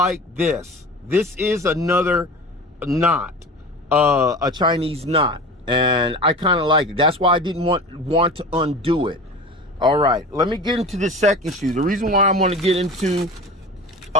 this. This is another knot, a Chinese knot, and I kind of like it. That's why I didn't want to undo it. All right, let me get into the second shoe. The reason why I want to get into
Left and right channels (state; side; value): normal; both; correlation 0.34